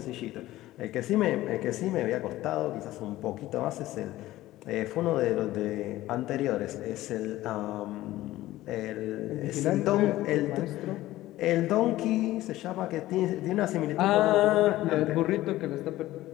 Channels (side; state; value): right; quieter; 16.0 dB